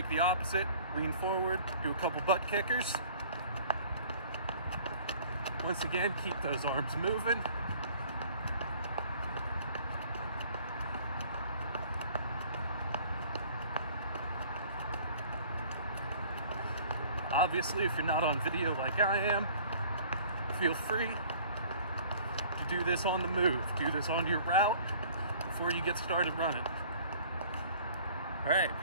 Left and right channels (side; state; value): both; inverted; correlation -0.51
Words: the opposite, lean forward, do a couple butt kickers. Once again, keep those arms moving. Obviously, if you're not on video like I am, feel free to do this on the move. Do this on your route before you get started running. All right,